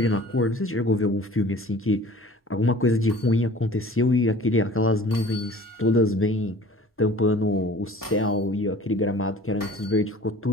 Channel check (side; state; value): both; normal; correlation 0.46